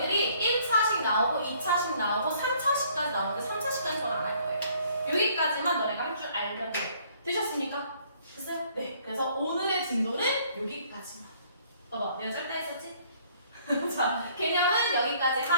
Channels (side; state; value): both; inverted; correlation -0.61